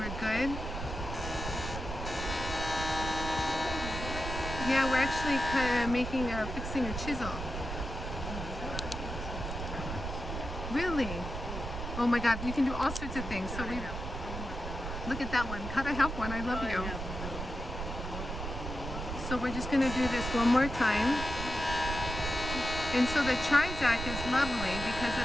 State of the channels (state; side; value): noise; right; rumble, 6 dB below the sound